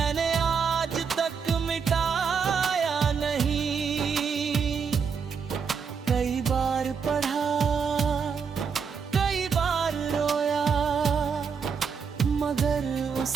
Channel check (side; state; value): left; quieter; 6.1 dB